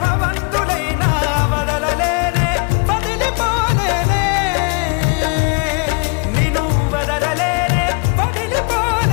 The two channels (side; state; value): right; quieter; 34.6 dB